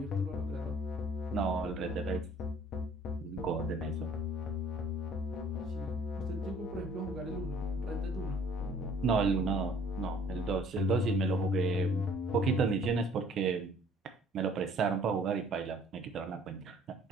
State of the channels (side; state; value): both; normal; correlation 0.55